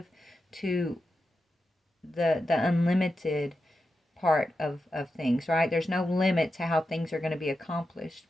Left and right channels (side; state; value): both; normal; correlation 0.89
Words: to the unlimited part of things, right? There's no limit to how things are going to be accomplished,